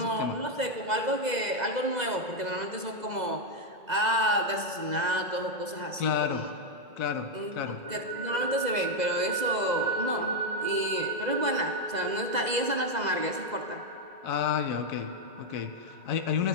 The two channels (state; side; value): late; left; 2.0 ms